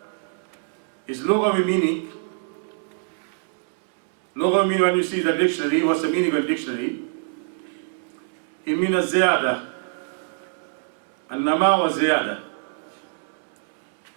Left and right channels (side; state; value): left; silent; digital silence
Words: is lughawi meaning. Lughawi meaning, when you see the dictionary, what's the meaning of the dictionary? It means ziyada. An-nama wa ziyada.